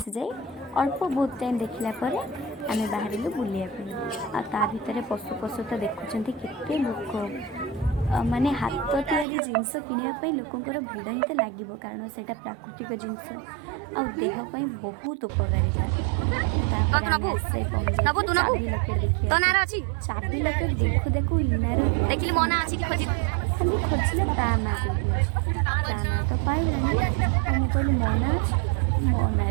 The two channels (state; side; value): drops out; left; at 9.2 s